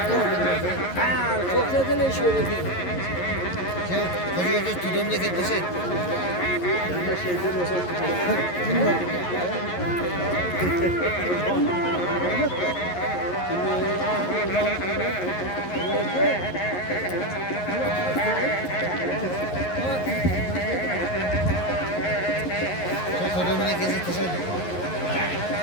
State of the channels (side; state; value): right; late; 11 ms